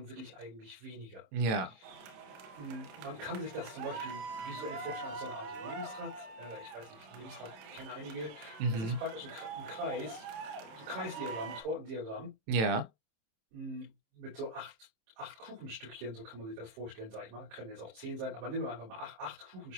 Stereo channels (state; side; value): late; left; 27 ms